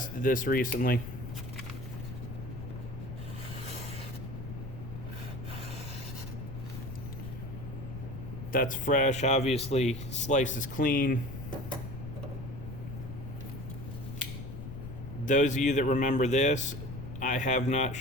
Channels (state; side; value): noise; left; rumble, 9 dB below the sound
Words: this recently, that's fresh, obviously slices clean. Those of you that remember this, I have not